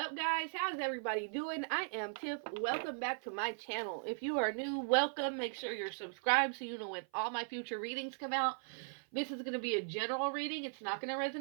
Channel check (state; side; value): silent; left; 52 dB below the other